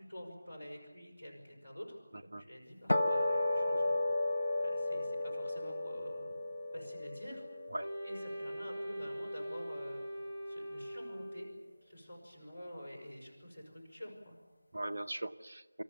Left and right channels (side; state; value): both; inverted; correlation -0.94